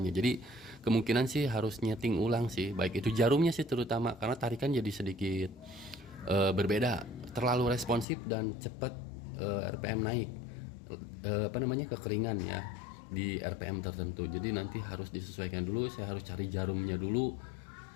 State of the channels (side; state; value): right; drops out; at 8.1 s